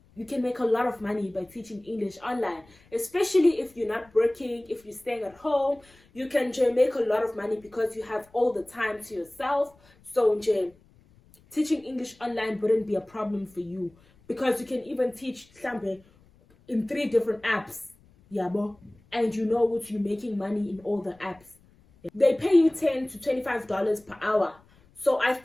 you can make a lot of money by teaching English online, especially if you're not working, if you're staying at home. You can make a lot of money because you have all the time to yourself. So teaching English online wouldn't be a problem for you, because you can even teach in 3 different apps, yabo, and you know what, you're making money in all the apps. They pay you $10 to $25 per hour. So I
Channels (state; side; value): noise; left; rumble, 29 dB below the sound